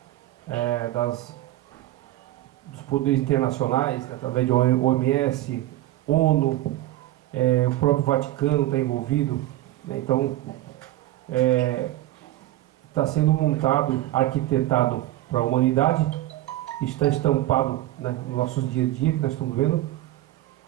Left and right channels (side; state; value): left; quieter; 15.4 dB